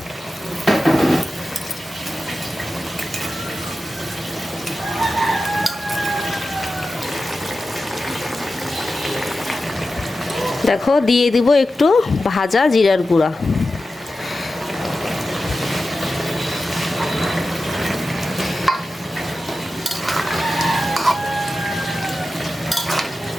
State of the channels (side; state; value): both; normal; correlation 0.92